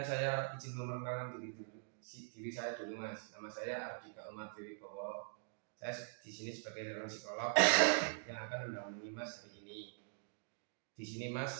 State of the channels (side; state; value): left; silent; digital silence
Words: saya izin memperkenalkan diri saya dulu Mas. Nama saya Ardika Umar Wibowo. Saya di sini sebagai seorang psikolog yang akan mendampingi Mas hari ini. Di sini